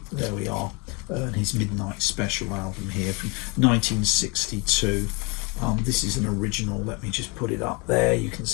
There we are, and his Midnight Special album here from 1962. This is an original. Let me just put it up there. You can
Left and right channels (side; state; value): right; quieter; 29.8 dB